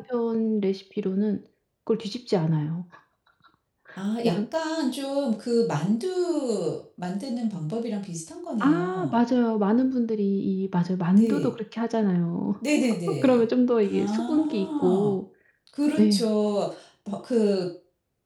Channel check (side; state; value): both; identical; correlation 1.00